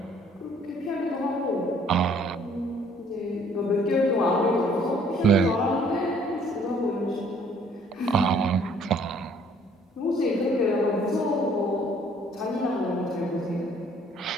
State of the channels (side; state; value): both; normal; correlation 0.59